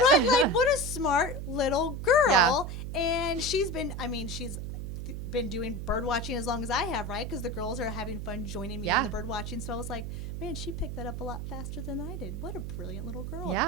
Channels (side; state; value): right; noise; hum, 5 dB below the sound